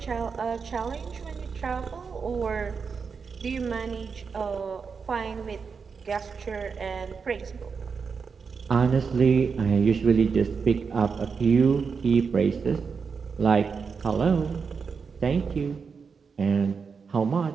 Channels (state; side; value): quieter; left; 5.5 dB